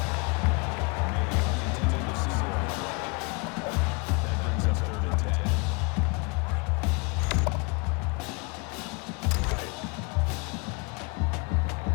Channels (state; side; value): quieter; right; 30.8 dB